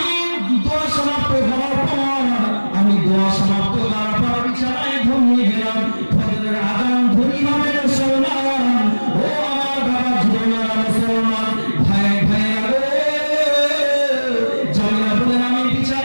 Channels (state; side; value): inverted; both; correlation -1.00